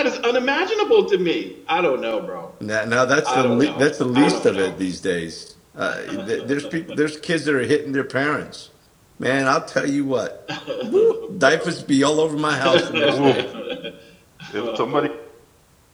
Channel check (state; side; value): identical; both; correlation 1.00